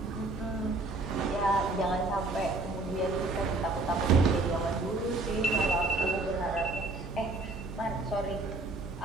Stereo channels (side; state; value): left; quieter; 3.1 dB